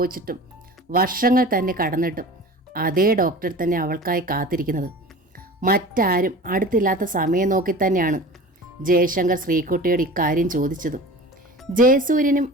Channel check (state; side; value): normal; both; correlation 0.38